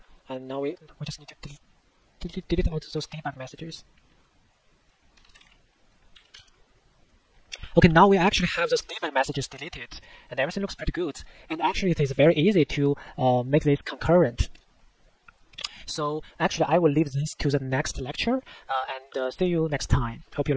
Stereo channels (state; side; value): identical; both; correlation 1.00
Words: and now we just need to delete all those debug messages. Okay, now we actually have those debug messages deleted, and everything looks pretty good. And actually, it is very easy to make this concurrent. So actually, I will leave this to the next lecture, and see you next time. Hope you